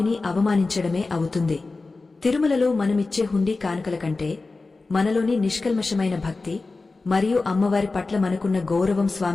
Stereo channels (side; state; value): right; quieter; 3.6 dB